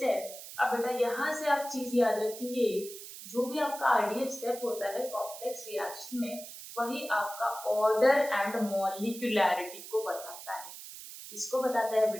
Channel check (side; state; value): right; noise; hiss, 13 dB below the sound